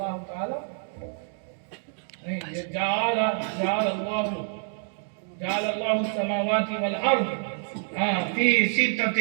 تعالی نہیں، یہ جعل اللہ السماوات والارض فی ستۃ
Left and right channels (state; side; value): silent; left; 59 dB below the other